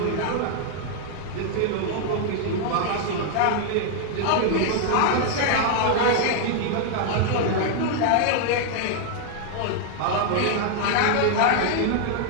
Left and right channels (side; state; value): both; different; correlation 0.00